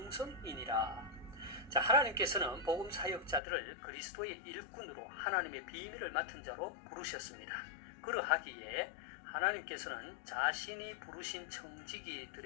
자, 하나님께서는 복음 사역자들을 그리스도의 일꾼으로 하나님의 비밀을 맡은 자로 부르셨습니다. 그러하기에 하나님께서는 자신이 부르신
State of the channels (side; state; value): right; drops out; at 3.4 s